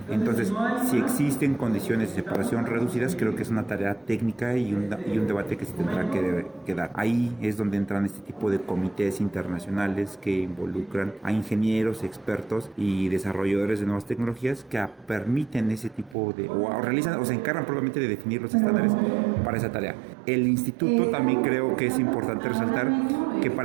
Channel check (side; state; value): left; drops out; at 16.2 s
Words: Entonces, si existen condiciones de separación reducidas, creo que es una tarea técnica y un debate que se tendrá que dar. Ahí es donde entran este tipo de comités internacionales que involucran a ingenieros, expertos y desarrolladores de nuevas tecnologías que permiten ese tipo de, o realizan o se encargan probablemente de definir los estándares para esa tarea. El instituto también creo que es importante resaltar que